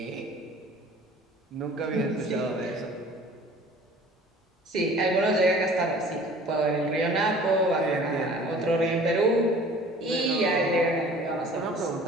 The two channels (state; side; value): normal; both; correlation 0.48